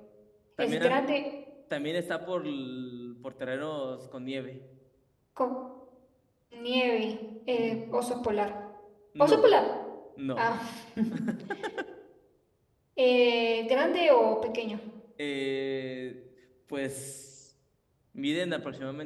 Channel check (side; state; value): both; identical; correlation 1.00